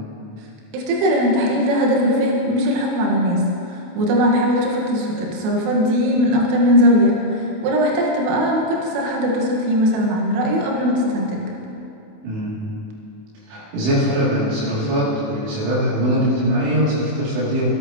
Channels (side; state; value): left; late; 28 ms